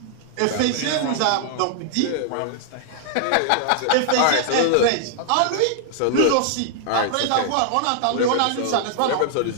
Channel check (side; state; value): both; different; correlation -0.01